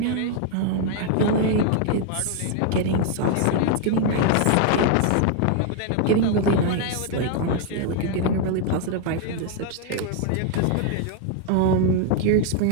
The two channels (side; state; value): both; different; correlation 0.00